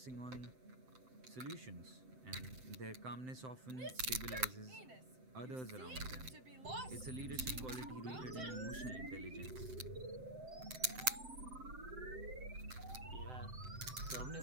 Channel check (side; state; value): left; late; 7.8 ms